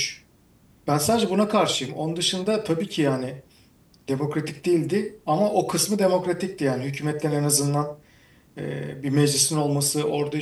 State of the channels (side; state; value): both; identical; correlation 1.00